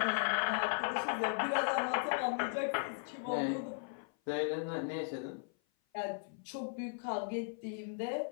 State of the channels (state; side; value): silent; right; 53 dB below the other